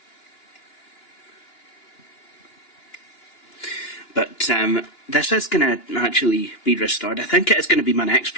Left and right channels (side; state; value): right; late; 2.9 ms